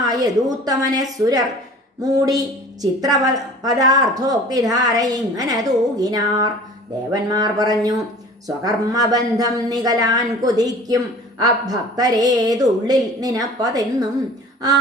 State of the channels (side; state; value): both; normal; correlation 0.44